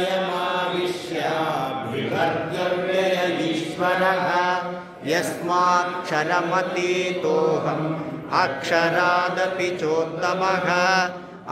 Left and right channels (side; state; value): both; identical; correlation 1.00